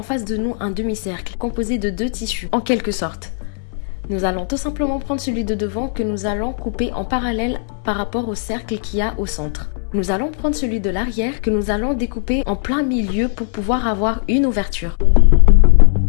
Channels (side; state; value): right; silent; 63 dB below the other